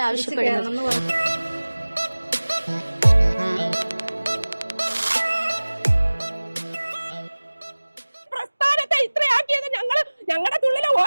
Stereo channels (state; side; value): inverted; both; correlation -1.00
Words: ആവശ്യപ്പെടുന്നത്? ഞങ്ങളുടെ തുള്ളിലെ